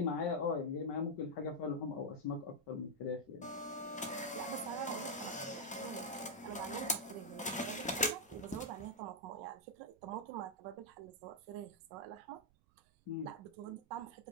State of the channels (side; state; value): right; noise; rumble, 30 dB below the sound